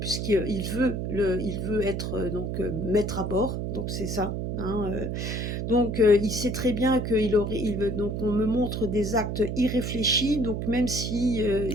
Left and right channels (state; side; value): noise; right; hum, 3 dB below the sound